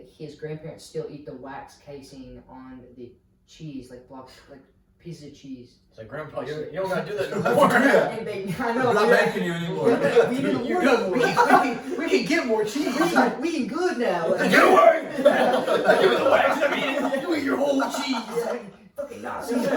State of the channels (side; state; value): both; identical; correlation 1.00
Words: his grandparents still eat the wax casing on the cheese, like blocks, like pieces of cheese. It's like, Grandpa, you don't gotta do that That's anymore. good. And I know, We're not yeah. making you anymore. Yeah, we didn't You're work. good. We can get more cheese. We eating good now. Get away! Give me the wax. I mean, you eat your whole cheese. Yeah, fucking Nazi.